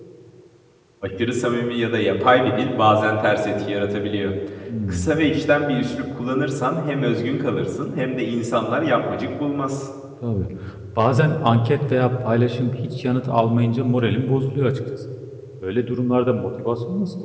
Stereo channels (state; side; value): identical; both; correlation 1.00